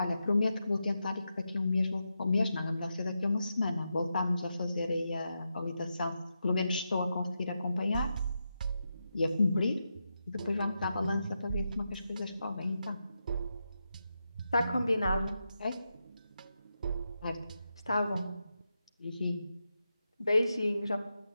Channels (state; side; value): inverted; both; correlation -0.87